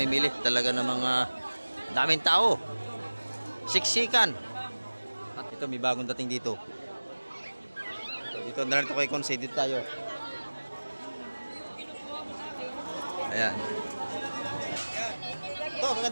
Talaga namang daming tao. Siksikan. At ito, may bagong dating dito. Dito na rin ito kay Consay. Dito tayo. Ayan. Ito,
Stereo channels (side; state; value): both; inverted; correlation -1.00